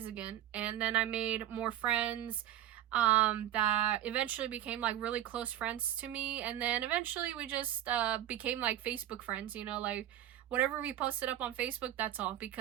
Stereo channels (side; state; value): left; quieter; 12.2 dB